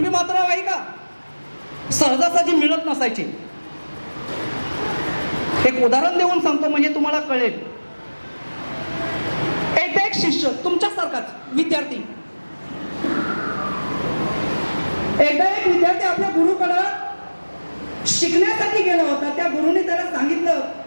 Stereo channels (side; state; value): both; inverted; correlation -1.00